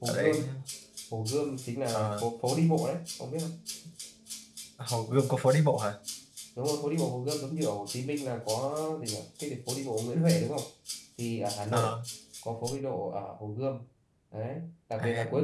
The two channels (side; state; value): both; identical; correlation 1.00